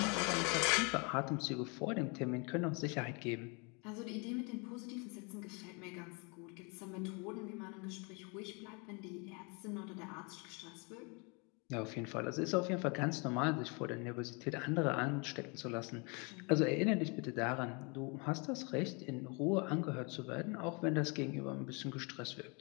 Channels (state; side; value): quieter; right; 31.9 dB